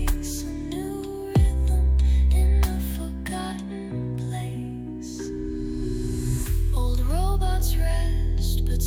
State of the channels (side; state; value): both; identical; correlation 1.00